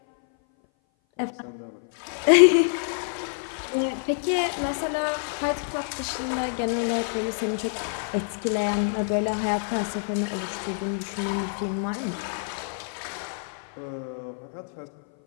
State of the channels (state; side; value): silent; right; 57 dB below the other